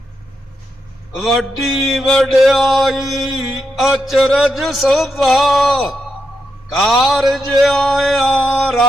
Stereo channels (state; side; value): normal; both; correlation 0.84